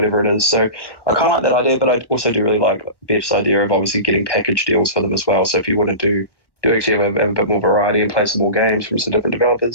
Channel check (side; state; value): right; late; 1.1 ms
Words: it is. So I kind of like that idea, but I also do really like Beth's idea of obviously getting package deals for them as well. So if you want to do actually have a bit more variety and play some more games from some different